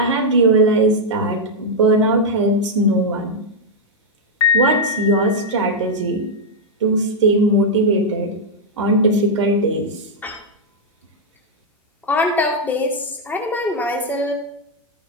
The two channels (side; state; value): both; normal; correlation -0.03